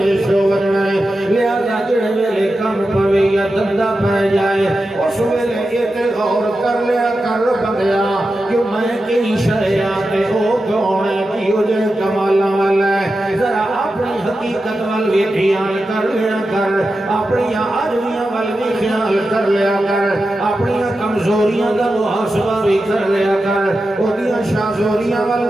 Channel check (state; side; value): normal; both; correlation 0.91